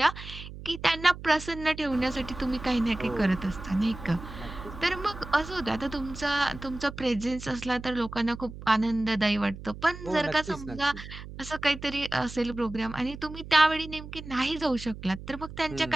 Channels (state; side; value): noise; right; hum, 13 dB below the sound